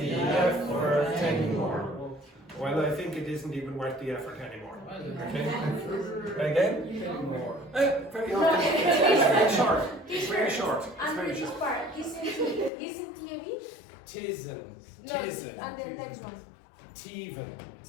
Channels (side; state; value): right; drops out; at 12.7 s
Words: effort anymore. Well, I think it isn't even worth the effort anymore. Okay? Again? More. Very often. It's very short. It's very short. It's And very this short. part isn't TV? Tisn't. And the next one. Teven.